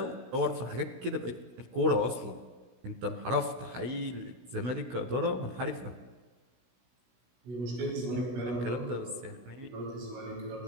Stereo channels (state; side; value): late; left; 16 ms